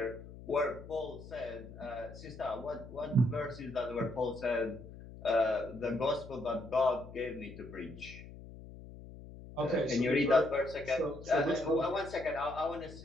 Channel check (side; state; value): left; noise; hum, 15 dB below the sound